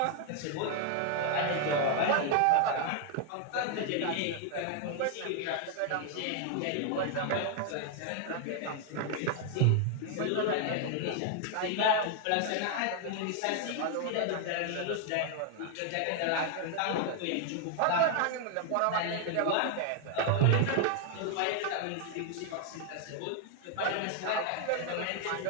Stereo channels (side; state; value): both; different; correlation 0.00